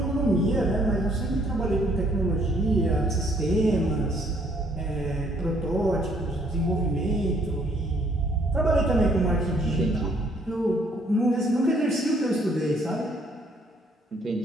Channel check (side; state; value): both; normal; correlation 0.65